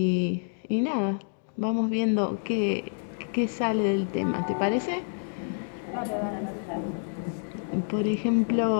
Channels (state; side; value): silent; right; digital silence